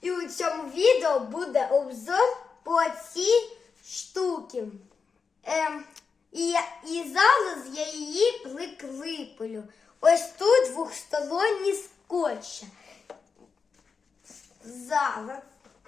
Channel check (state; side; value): quieter; right; 5.4 dB